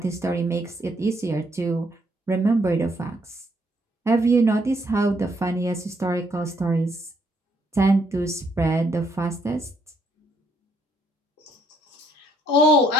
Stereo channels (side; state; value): both; normal; correlation 0.70